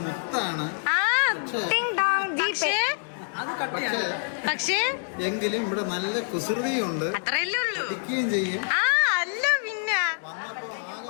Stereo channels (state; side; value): silent; right; 61 dB below the other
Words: മുത്താണ്. പക്ഷേ എങ്കിലും ഇവിടെ നല്ല കുസൃതിയുണ്ട്. അത്രയല്ലേ ഉള്ളൂ. ചെയ്യും. അല്ല പിന്നെ വന്നപ്പോ ആകെ